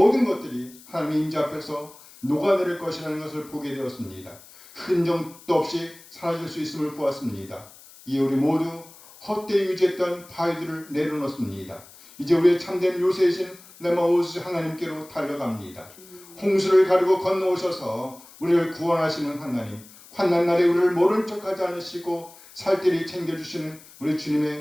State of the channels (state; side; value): noise; left; hiss, 22 dB below the sound